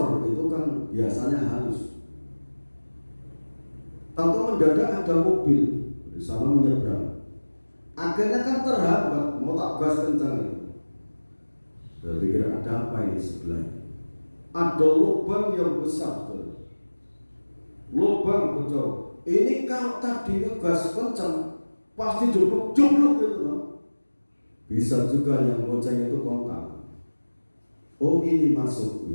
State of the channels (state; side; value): inverted; both; correlation -1.00